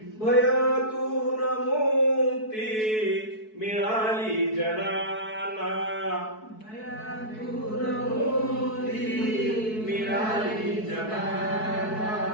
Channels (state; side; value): late; right; 4.6 ms